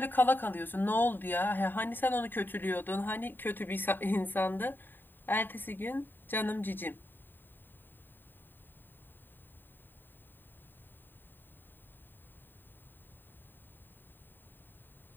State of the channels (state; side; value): late; right; 0.093 ms